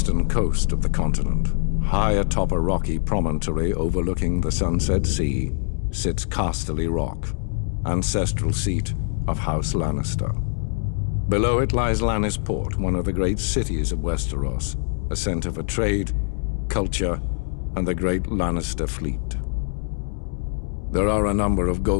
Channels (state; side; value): silent; right; digital silence